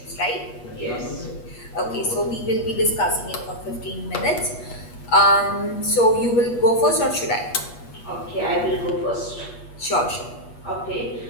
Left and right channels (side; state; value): right; late; 8.3 ms